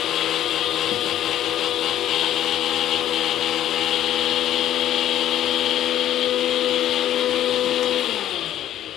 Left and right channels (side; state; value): right; quieter; 11.9 dB